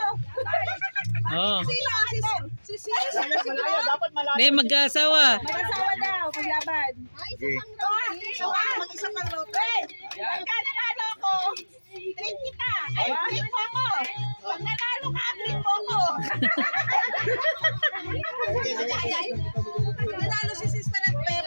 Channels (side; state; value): both; inverted; correlation -1.00